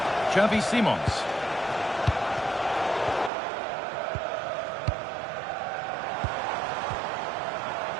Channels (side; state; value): left; drops out; at 3.3 s